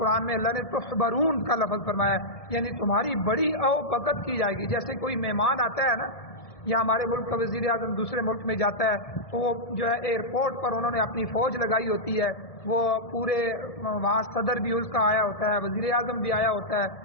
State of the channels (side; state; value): right; late; 1.7 ms